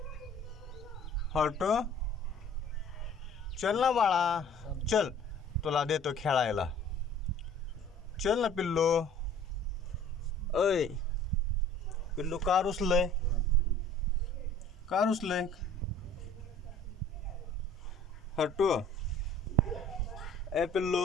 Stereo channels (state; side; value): normal; both; correlation 0.50